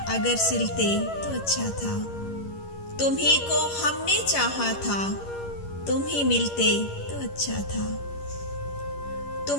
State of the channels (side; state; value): right; late; 11 ms